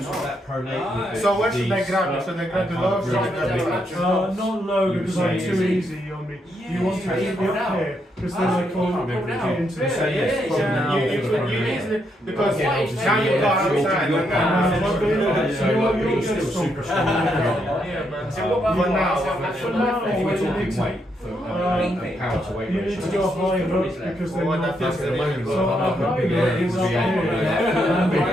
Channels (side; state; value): both; normal; correlation 0.78